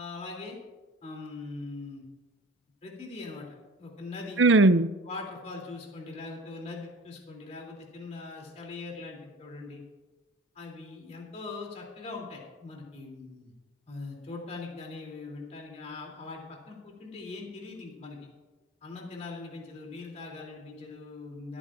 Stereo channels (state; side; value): normal; both; correlation 0.42